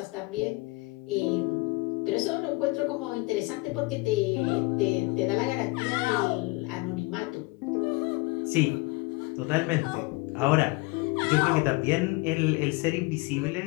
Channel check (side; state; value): right; quieter; 24.9 dB